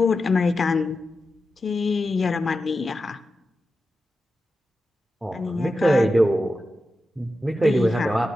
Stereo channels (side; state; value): both; normal; correlation 0.91